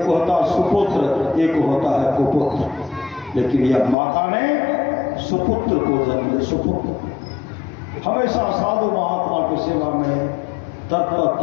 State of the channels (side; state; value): right; drops out; at 4.0 s